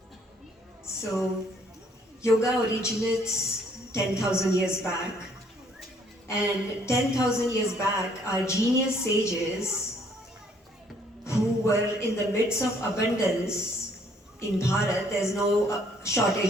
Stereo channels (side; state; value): both; normal; correlation 0.63